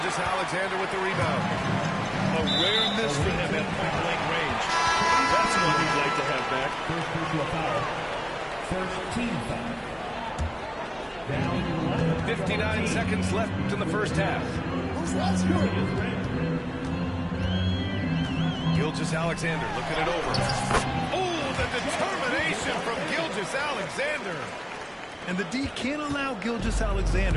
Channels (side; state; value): both; identical; correlation 1.00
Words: with the rebound. A rare miss for him at point-blank range. That's one he'd like to have back. First personal foul. First team foul. Down 59 seconds left in the first half. Gilgeous-Alexander looking it over. Oh, the determination from Gilgeous-Alexander. And the D can't allow